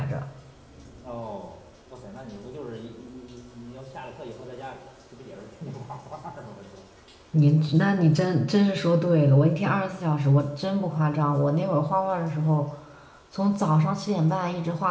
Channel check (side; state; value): both; identical; correlation 1.00